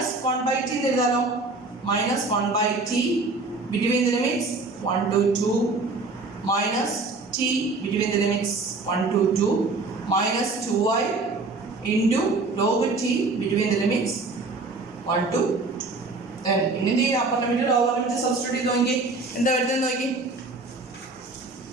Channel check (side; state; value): left; quieter; 3.5 dB